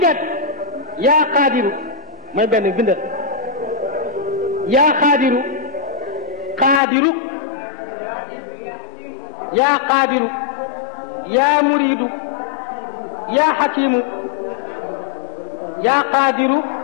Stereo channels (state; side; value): drops out; right; at 6.8 s